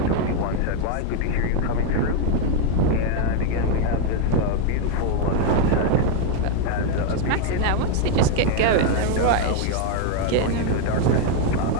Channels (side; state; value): both; different; correlation 0.01